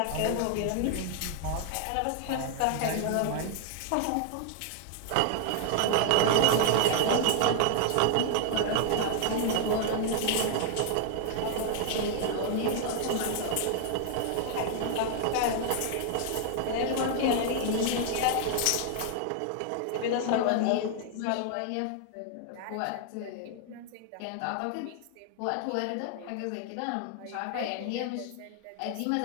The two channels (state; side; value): different; both; correlation 0.00